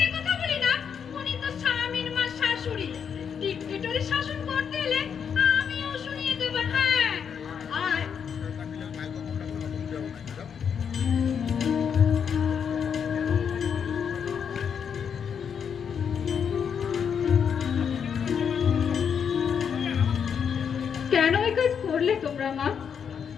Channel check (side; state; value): right; quieter; 7.3 dB